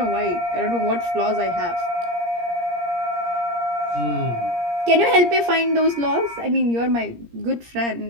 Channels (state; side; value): late; left; 17 ms